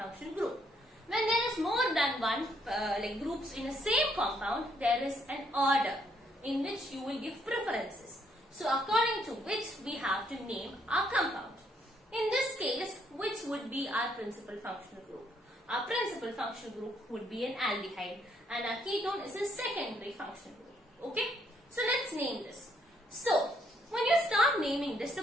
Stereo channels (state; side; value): normal; both; correlation 0.71